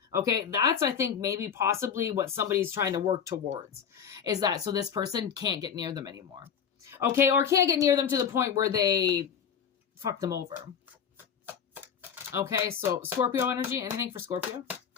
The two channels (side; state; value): right; quieter; 7.5 dB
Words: Okay, that's, I think, maybe possibly what somebody's trying to work towards, is that so this person can't get near them anymore. Okay, or can't get near them to the point where they fuck them over. Okay, so Scorpio energy, anything for Scorpio?